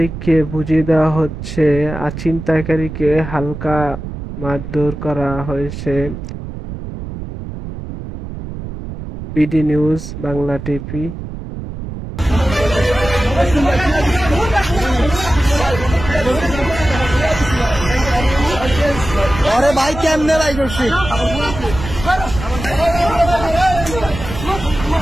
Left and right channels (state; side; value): noise; right; rumble, 9 dB below the sound